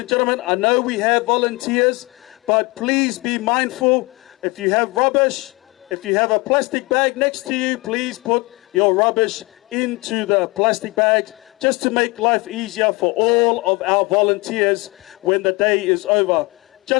gentlemen, I know we have volunteers, but please be mindful. If you have rubbish, If you have a plastic bag next to you, please put your rubbish into the plastic bags just to make life easier for all of our volunteers when the day is over.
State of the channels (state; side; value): quieter; right; 25.8 dB